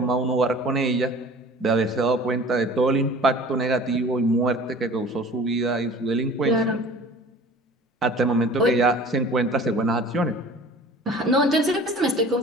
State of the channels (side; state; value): both; normal; correlation 0.45